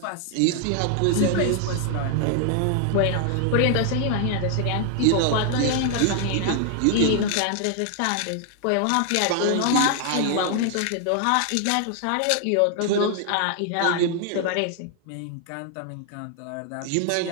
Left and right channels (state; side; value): different; both; correlation 0.00